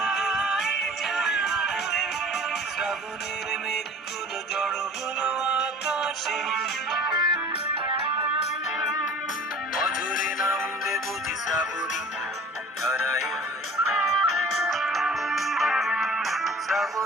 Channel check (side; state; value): both; normal; correlation 0.45